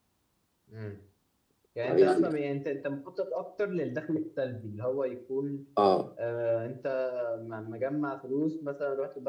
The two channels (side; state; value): both; identical; correlation 1.00